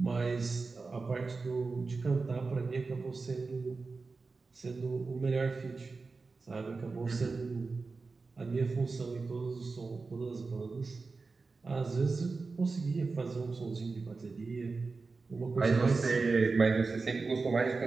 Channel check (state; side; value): quieter; left; 4.1 dB